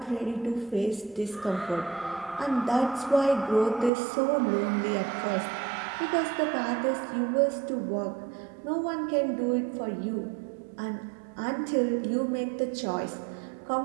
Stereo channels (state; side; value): drops out; left; at 3.9 s